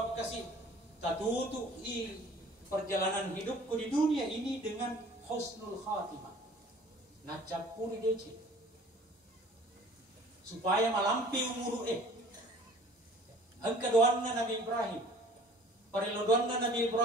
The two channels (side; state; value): both; normal; correlation 0.50